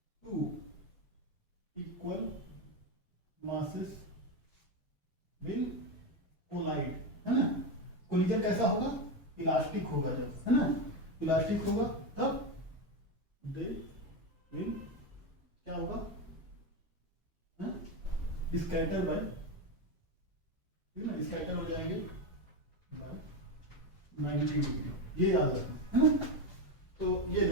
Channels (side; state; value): both; normal; correlation 0.12